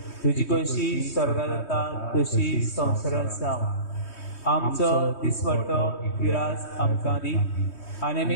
तुजी कशी स्वर्गांत जाता तशी संवसारांत जावं. आमचो दिसवटो विरास आमकां दी आनी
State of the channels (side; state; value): right; late; 3.2 ms